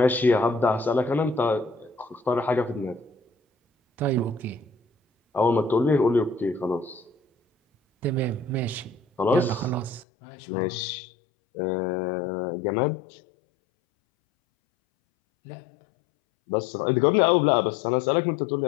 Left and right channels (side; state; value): right; drops out; at 10.1 s